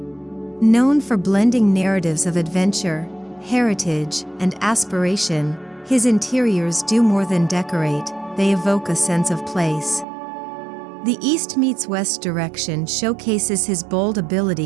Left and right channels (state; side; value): drops out; left; at 10.1 s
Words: Known for blending narratives of adventure, heritage, and aspiration, his interiors do more than decorate, they evoke a sense of place. The East meets West direction showcases his bold